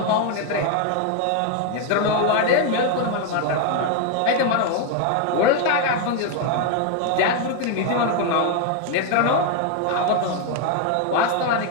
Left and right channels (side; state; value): both; different; correlation 0.01